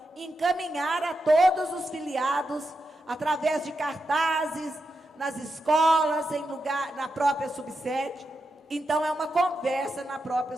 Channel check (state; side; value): normal; both; correlation 0.87